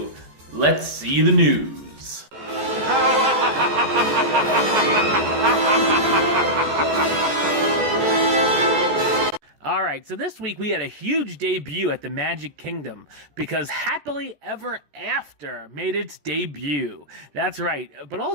let's see the news. Alright, so this week we had a huge debut at the Magic Kingdom because Happily Ever After made its debut. That's right, but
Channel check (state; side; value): late; left; 14 ms